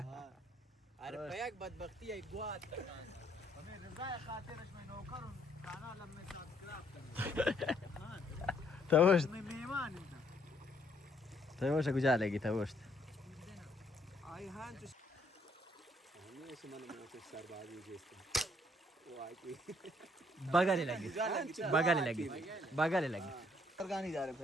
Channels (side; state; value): both; normal; correlation 0.68